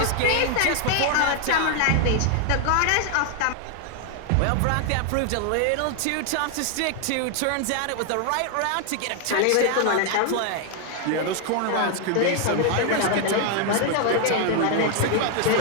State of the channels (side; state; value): both; different; correlation 0.00